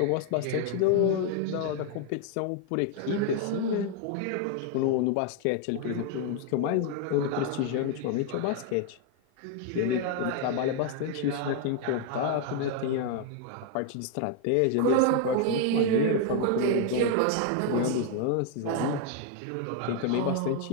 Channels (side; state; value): both; different; correlation 0.00